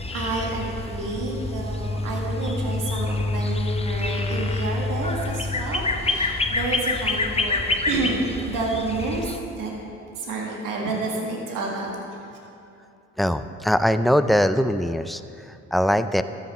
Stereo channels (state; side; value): normal; both; correlation 0.58